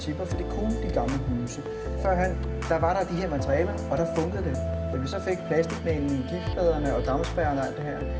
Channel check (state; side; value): identical; both; correlation 1.00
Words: for det kunne de gamle huse. Førhen, der var der de her materialer, og der fungerede det. Da vi så fik plastikmængden, giftpladerne og dampspærrerne og alt det her,